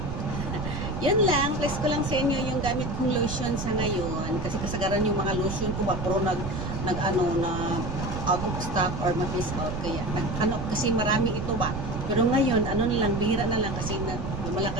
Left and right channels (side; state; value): right; noise; rumble, 5 dB below the sound